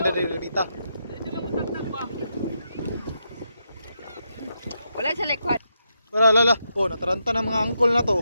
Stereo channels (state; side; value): inverted; both; correlation -0.83